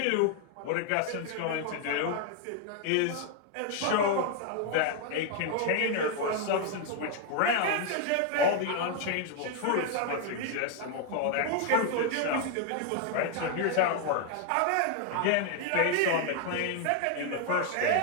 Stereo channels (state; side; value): different; both; correlation 0.00